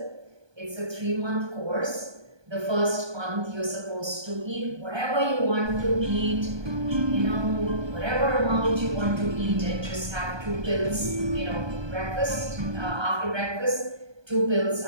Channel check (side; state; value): left; late; 1.2 ms